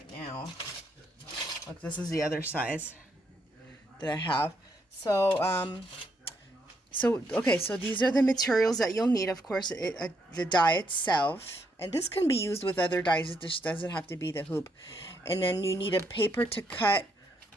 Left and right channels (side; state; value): both; normal; correlation 0.76